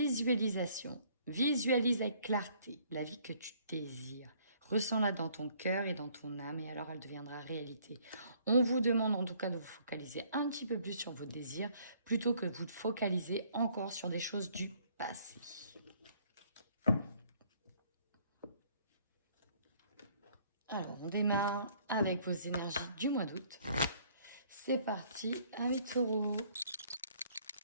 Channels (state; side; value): inverted; both; correlation -0.61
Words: Visualise avec clarté la vie que tu désires. Ressens-la dans ton cœur et dans ton âme et alors elle deviendra réalité. On vous demande en tout cas de vous focaliser un petit peu plus sur vos désirs plutôt que de vous focaliser encore sur des choses du passé. Alors, on démarre avec vos énergies du mois d'août. C'est parti avec Taureau.